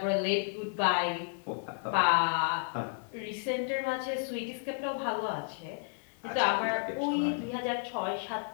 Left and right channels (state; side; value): silent; right; digital silence